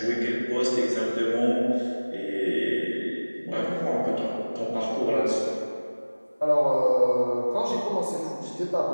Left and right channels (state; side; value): inverted; both; correlation -1.00